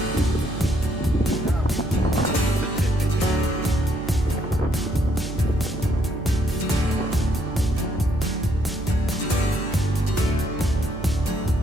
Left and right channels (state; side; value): noise; right; hum, 9 dB below the sound